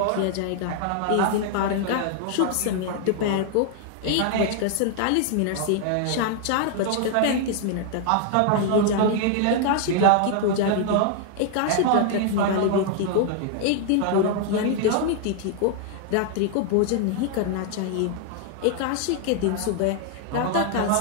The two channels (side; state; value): both; different; correlation 0.00